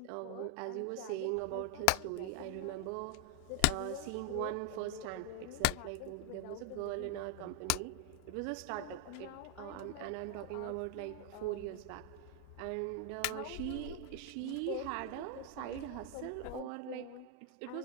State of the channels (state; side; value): different; both; correlation 0.00